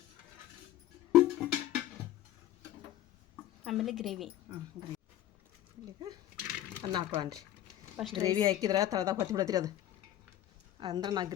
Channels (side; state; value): right; quieter; 12.7 dB